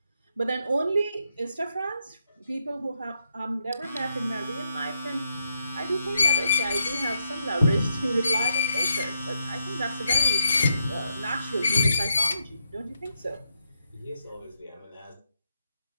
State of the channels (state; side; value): inverted; both; correlation -0.81